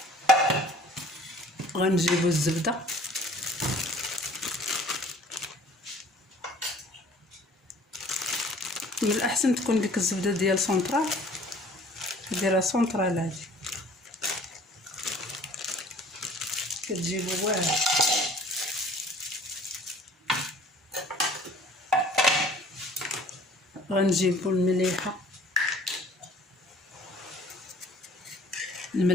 غنجيبو الزبده من الاحسن تكون ديك الزبده ديال سونطرال، ديرها سونطرال هادي كتجيبو واعر. غنجيبو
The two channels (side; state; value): both; normal; correlation 0.52